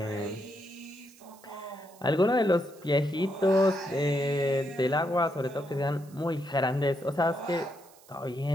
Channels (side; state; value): right; noise; hiss, 25 dB below the sound